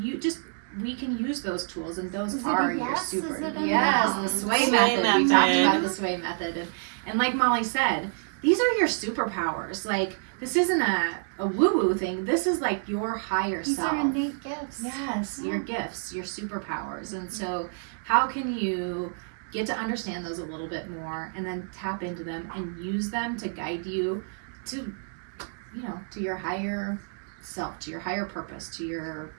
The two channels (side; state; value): left; silent; digital silence